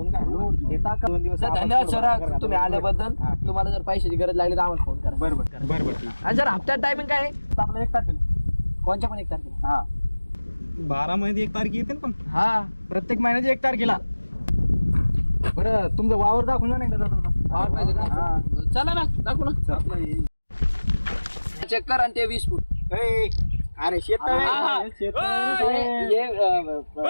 काय घेता का 2 दिवस सर धन्यवाद सर तुम्ही आल्याबद्दल. तुम्हाला जर पैशाची गरज लागली तर आम्हाला फोन करा. बरोबर आणि सर हप्त्यात टायमिंग काय आहे? आपलं 1 तारखेला कोणच्या पण 1 तारखेला? हा 12 मध्ये 1 तारीख येते ना पण हा प्रत्येक महिन्याची 1 तारखेला. बरं तुमचं वावर दाखवून जा नाही का जाता जाता? वावर पाहिजे हा. का? चला ना दाखवू ना. चेक कर आणि ते 20 फूट. ए, अरे शेत हा, हा. हे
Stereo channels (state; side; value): inverted; both; correlation -1.00